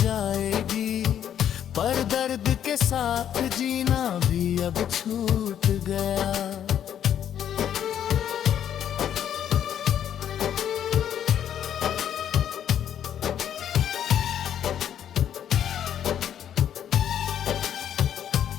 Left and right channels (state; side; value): quieter; right; 9.8 dB